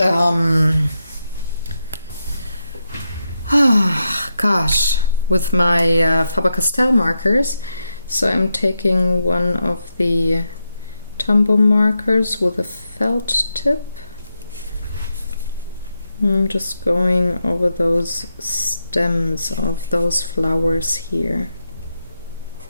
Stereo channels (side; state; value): both; inverted; correlation -0.86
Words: with my Faber-Castell markers. So I'm taking one of the Tombow markers with a felt tip. I'm just going over those stems of those flowers here.